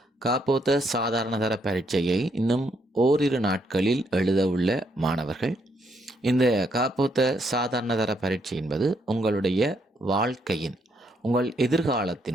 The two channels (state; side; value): normal; both; correlation 0.74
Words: காப்போத்த சாதாரணதர பரீட்சையை இன்னும் ஓரிரு நாட்களில் எழுத உள்ள மாணவர்கள், இந்த காப்போத்த சாதாரணதர பரீட்சை என்பது உங்களுடைய வாழ்க்கையின், உங்கள்